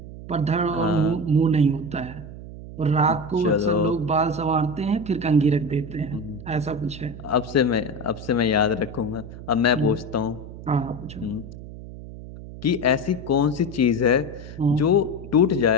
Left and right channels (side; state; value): right; noise; hum, 13 dB below the sound